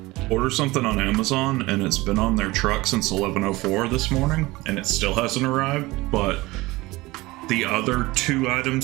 order something on Amazon and it's been on their truck since 11:04 this morning and it still hasn't arrived, but the other two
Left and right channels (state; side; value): quieter; left; 20.6 dB